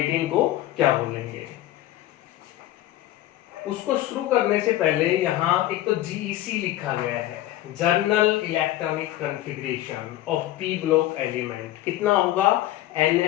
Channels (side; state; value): right; quieter; 14.6 dB